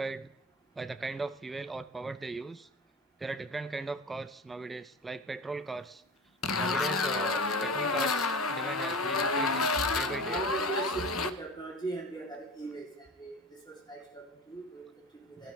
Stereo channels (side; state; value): both; normal; correlation 0.34